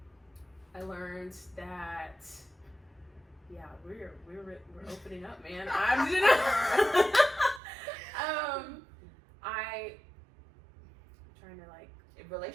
I learned that, yeah, we're opening up, man. I'm trying to, like,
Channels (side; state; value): left; drops out; at 7.6 s